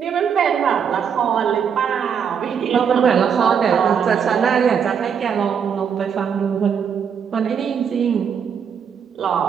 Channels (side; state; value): left; quieter; 7.3 dB